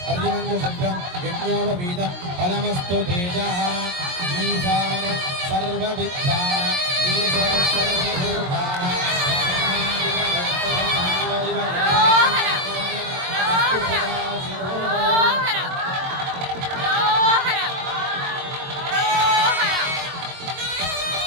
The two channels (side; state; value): left; late; 22 ms